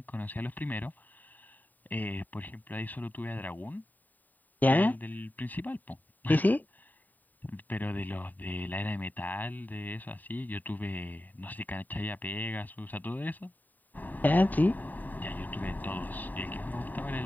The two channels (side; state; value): right; late; 0.086 ms